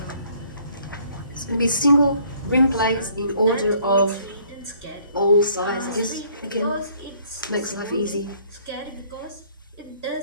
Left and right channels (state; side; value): inverted; both; correlation -0.62